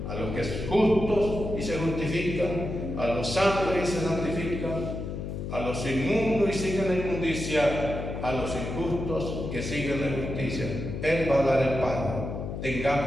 a los que son justos y se justifican, a los santos y se santifican, a los inmundos y siguen la inmundicia, a los injustos que siguen la injusticia. Él va a dar el pago.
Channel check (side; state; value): left; noise; hum, 6 dB below the sound